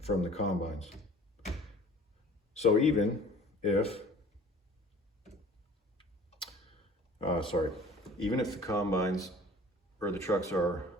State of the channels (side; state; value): both; normal; correlation 0.48